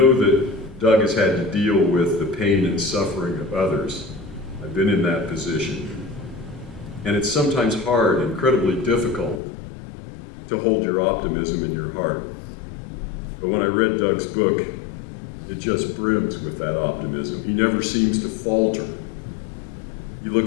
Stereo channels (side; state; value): right; drops out; at 9.4 s